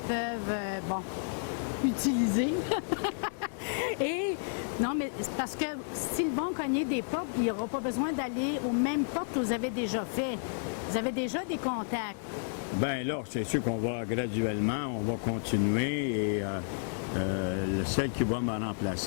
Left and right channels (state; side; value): silent; right; digital silence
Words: peuvent, utiliser. Et, non, mais c'est parce que s'ils vont cogner des portes, il n'y aura pas besoin d'aller aux mêmes portes que vous avez déjà fait. Vous avez déjà des contacts. Bien là, c'est sûr qu'on va graduellement, on va continuer et celle qui va me